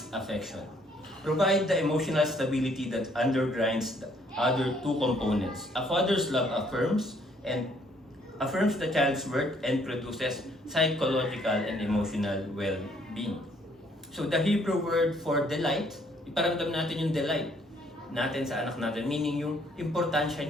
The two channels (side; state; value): both; normal; correlation 0.65